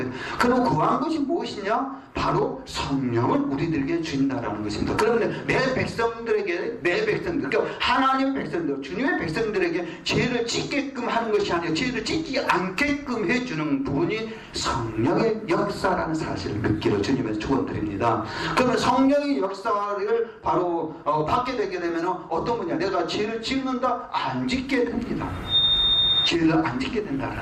그럼 구한 것이 무엇이냐? 바로 성령을 우리들에게 주신다라는 것입니다. 그러면 내 백성들에게, 그러니까 하나님의 백성들, 주님의 백성들에게 죄를 짓게끔 하는 것이 아니라 죄를 짓지 않게끔 해주는 부분이 성령의 역사라는 사실을 믿기를 주님의 축원드립니다. 그러면 성령의 역사를 바로 받게 되게 되면 어떤 거냐, 내가 죄를 짓는다, 안 짓게 됩니다. 죄를 안 짓게 된다는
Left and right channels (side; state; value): both; identical; correlation 1.00